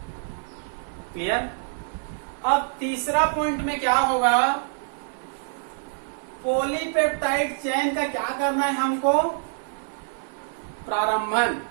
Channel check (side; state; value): left; silent; 61 dB below the other